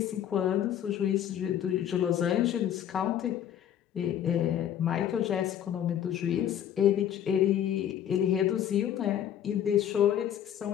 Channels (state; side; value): quieter; right; 10.3 dB